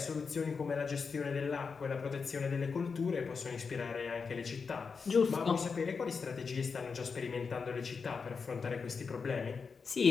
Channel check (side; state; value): right; quieter; 5.3 dB